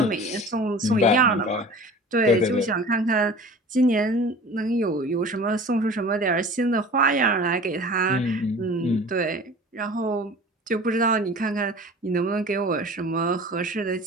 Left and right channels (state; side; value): normal; both; correlation 0.41